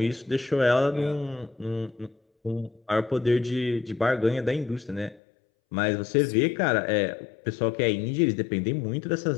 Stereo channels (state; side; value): drops out; right; at 5.2 s